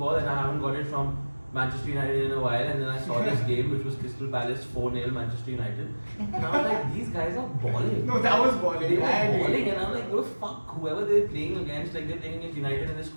and I haven't got it from Manchester United in a while. And then I saw this game which was Crystal Palace 4-0 Manchester United. And I was like, these guys are balling. No, that was balling. They were I agree. balling and I'm like, oh fuck, whoever they're playing against, like they're playing against United and they're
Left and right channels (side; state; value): both; inverted; correlation -1.00